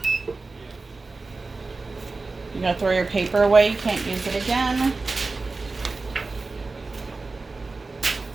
You gotta throw your paper away, you can't use it again.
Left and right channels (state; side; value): quieter; left; 3.7 dB